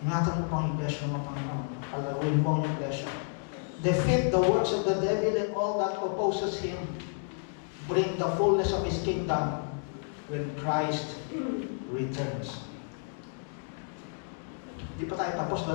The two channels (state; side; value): silent; right; 57 dB below the other